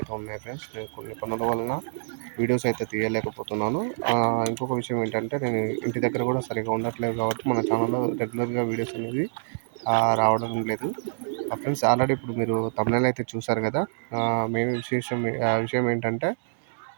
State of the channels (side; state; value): left; silent; digital silence